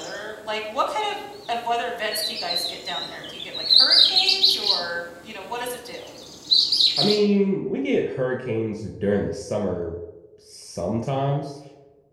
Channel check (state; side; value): identical; both; correlation 1.00